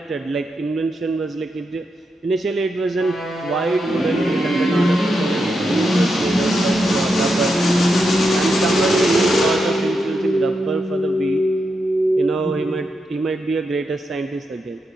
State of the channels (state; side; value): normal; both; correlation 0.85